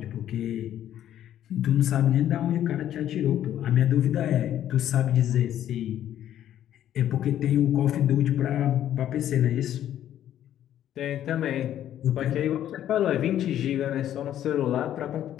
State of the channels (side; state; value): right; quieter; 11.3 dB